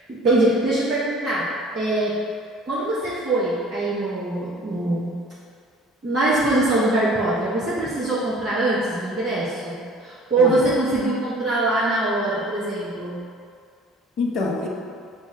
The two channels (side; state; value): both; normal; correlation 0.48